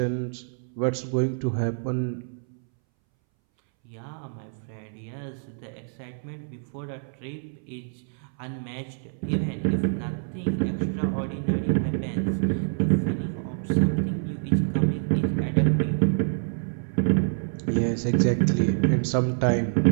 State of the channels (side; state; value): left; silent; 61 dB below the other